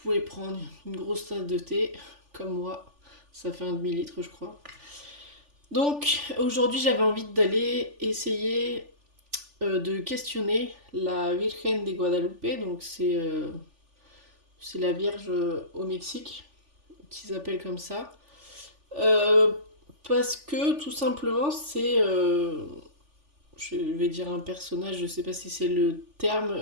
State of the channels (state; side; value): late; left; 3.4 ms